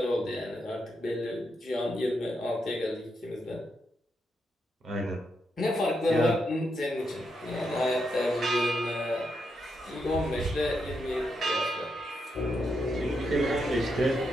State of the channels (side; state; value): both; normal; correlation 0.82